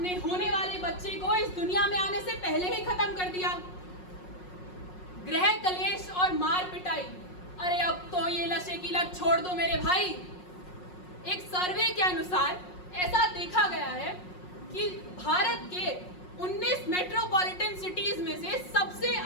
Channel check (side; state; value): right; late; 5.5 ms